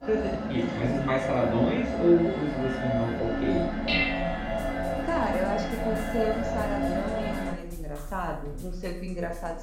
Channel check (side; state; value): both; identical; correlation 1.00